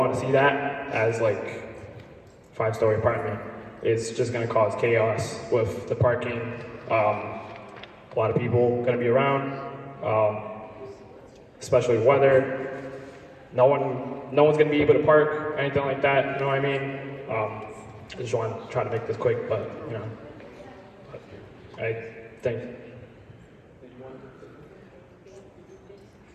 to see that as like 5-story apartment. It's just going to cause chaos with the parking. A lot of people going to be around. Especially weather. No one's gonna be able to park, anything like that, you know what I mean? I just want to try to make this quick, but you know, I think,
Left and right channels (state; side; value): identical; both; correlation 1.00